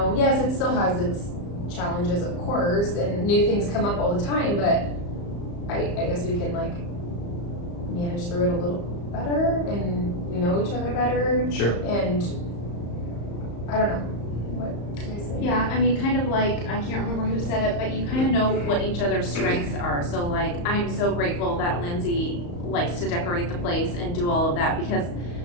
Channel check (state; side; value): late; right; 35 ms